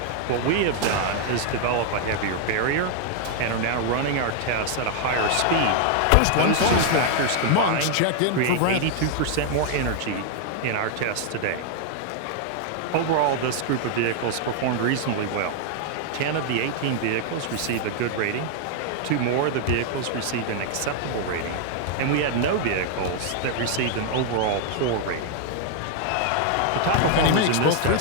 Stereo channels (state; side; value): different; both; correlation 0.00